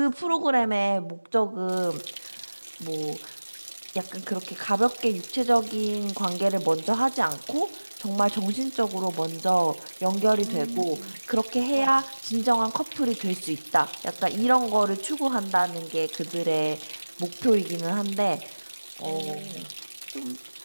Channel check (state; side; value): inverted; both; correlation -1.00